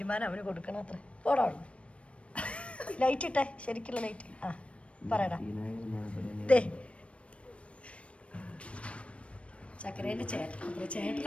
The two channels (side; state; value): right; late; 0.061 ms